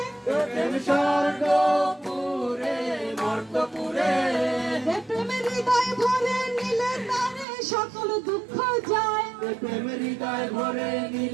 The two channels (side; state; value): left; drops out; at 7.5 s